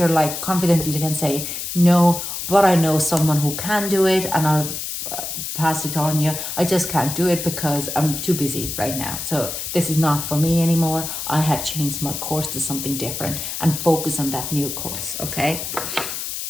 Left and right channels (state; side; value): noise; left; hiss, 5 dB below the sound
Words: like confidently can say, no, but I know someone who can do it, and I'll pass it on you. I just can't do it because I'm too busy right now. So this is not for me anymore. I have changed my course to something different and focus on that new course. Okay.